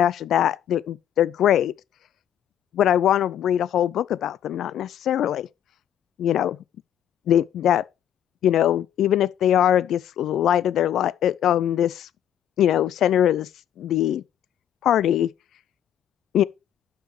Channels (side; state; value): right; quieter; 10.5 dB